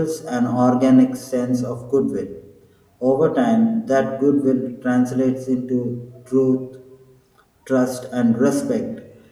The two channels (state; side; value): identical; both; correlation 1.00